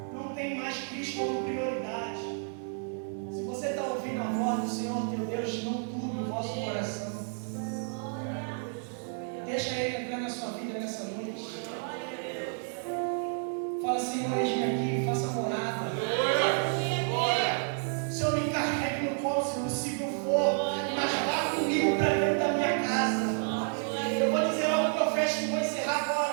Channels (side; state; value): left; silent; 55 dB below the other